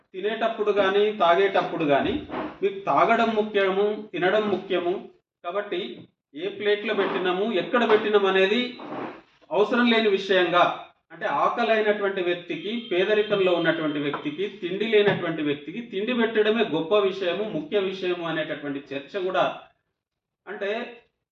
తినేటప్పుడు కానీ తాగేటప్పుడు కానీ మీకు తాగడం ముఖ్యము, తినడం ముఖ్యము, కాబట్టి ఏ ప్లేట్లో పెట్టినాము, ఎక్కడ పెట్టినాము అనేది అవసరం లేని విషయంగా, అంటే ఆకలి అయినటువంటి వ్యక్తికి, పేదరికంలో ఉన్నటువంటి వ్యక్తికి, తిండి లేనటువంటి వ్యక్తికి తిండి పెట్టడమే గొప్ప విషయము, ముఖ్య విషయము అనేటటువంటి చర్చ కూడా. అంటే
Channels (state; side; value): identical; both; correlation 1.00